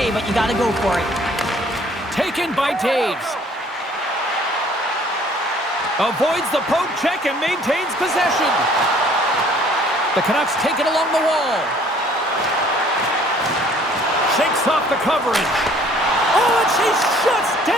but you got to go for it. Taken by Taves. Avoids the poke check and maintains possession. The Canucks take it along the wall. Shakes off the coverage. Oh, and she shuts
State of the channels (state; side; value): normal; both; correlation 0.57